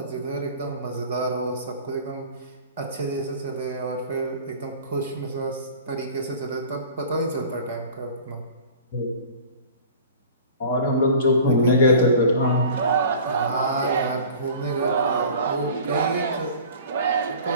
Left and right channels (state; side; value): inverted; both; correlation -0.43